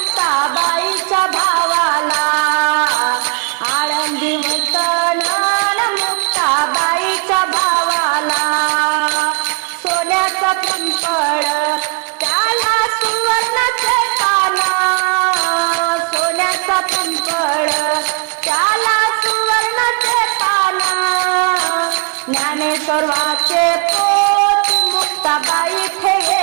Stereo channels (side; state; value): left; quieter; 31.3 dB